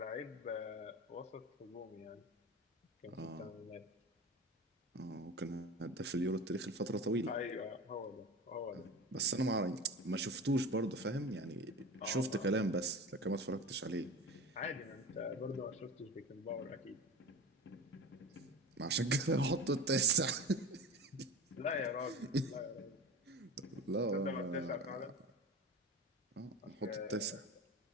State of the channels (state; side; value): normal; both; correlation 0.30